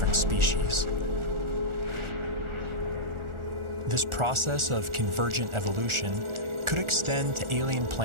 species. This process of convergent evolution could extend to alien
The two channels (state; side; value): late; left; 1.4 ms